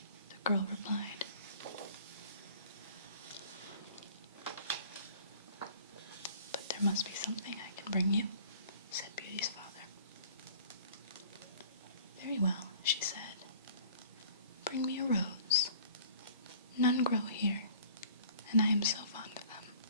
the girl replied. "But there must be something I can bring you," said Beauty's father. "Very well," she said. "Bring me a rose. None grow here, and I am so fond of them."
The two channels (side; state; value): both; inverted; correlation -0.50